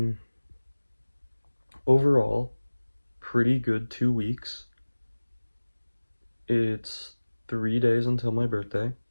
overall, pretty good 2 weeks. It's 3 days until my birthday.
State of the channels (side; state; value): both; inverted; correlation -1.00